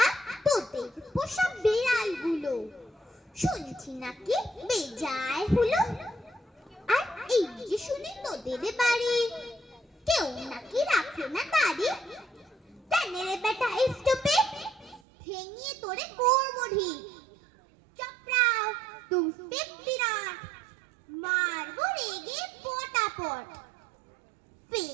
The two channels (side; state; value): left; drops out; at 15.0 s